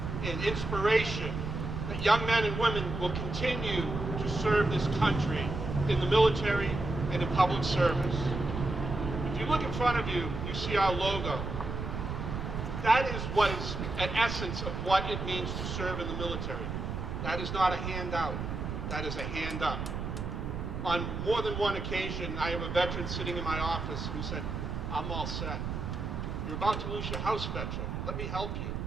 and inspiration that young men and women will continue to serve this country in the military and in public service. If you look in front of you, you see our logo. That is what is an essence of what it means to serve in the military. That is not a handout, that is a hand up. On more than one occasion, I have a veteran sitting in my office who said, I'm all set. You're about to lose your house, veteran. Let me help you.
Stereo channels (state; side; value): noise; right; rumble, 4 dB below the sound